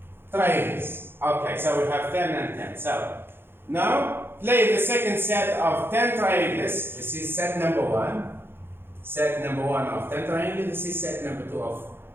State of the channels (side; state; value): left; late; 0.11 ms